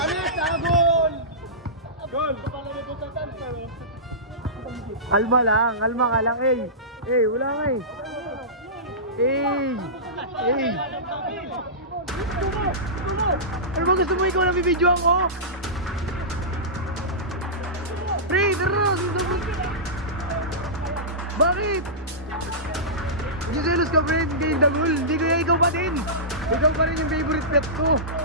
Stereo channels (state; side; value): normal; both; correlation -0.18